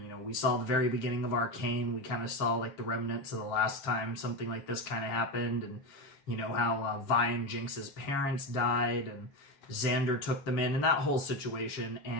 know, we saw the very beginning of Arcane. We kind of saw, like, the remnants of the last time something like this kind of happened, and, you know, how Vi and Jinx's parents died, and Xander took them in, and that whole situation,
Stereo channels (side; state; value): right; late; 7.3 ms